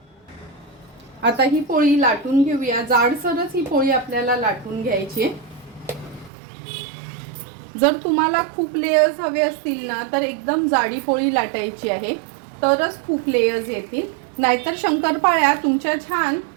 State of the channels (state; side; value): drops out; left; at 6.3 s